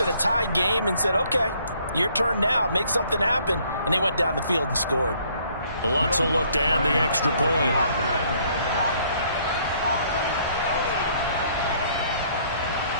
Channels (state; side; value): inverted; both; correlation -0.64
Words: a tied game and said, okay, your turn now, make something happen. And they went down the field and scored. Lots of look to add the extra point.